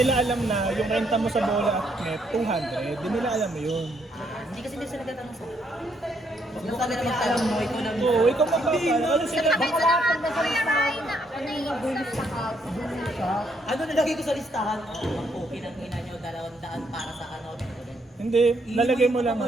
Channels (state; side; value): normal; both; correlation 0.73